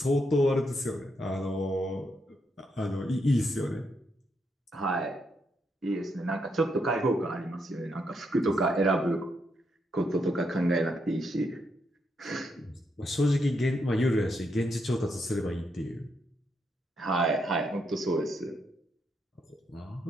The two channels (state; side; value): normal; both; correlation 0.79